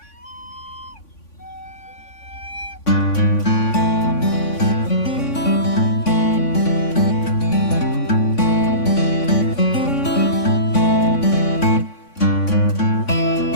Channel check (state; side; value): late; right; 3.5 ms